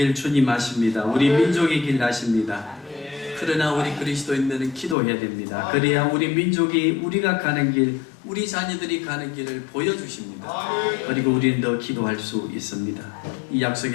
주님 아십니다. 우리 민족의 길 아십니다. 그러나 우리 그리스도인들은 기도해야 됩니다. 그래야 우리 민족이 우리가 가는 길, 우리 자녀들이 가는 길을 보여주십니다. 그리고 우리는 더 기도할 수 있습니다. 이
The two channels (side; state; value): right; drops out; at 5.0 s